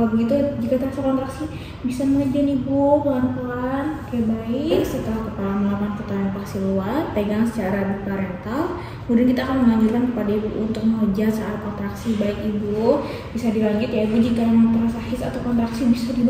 begitu jika terasa kontraksi bisa mengejar ibu pelan-pelan. Oke, baik. Setelah kepala melakukan putaran paksi luar, pegang secara biparental. Kemudian kita akan menganjurkan kepada ibu untuk mengejar saat kontraksi. Baik ibu, bisa dilanjut ya ibu. Jika memang terasa his atau kontraksi bisa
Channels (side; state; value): both; identical; correlation 1.00